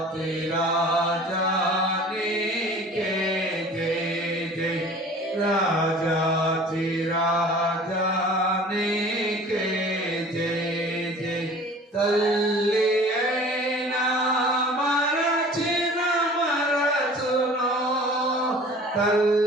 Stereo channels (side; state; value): both; normal; correlation 0.45